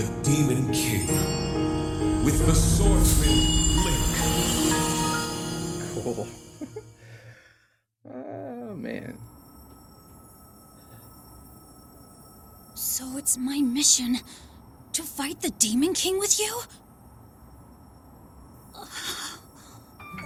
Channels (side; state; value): both; identical; correlation 1.00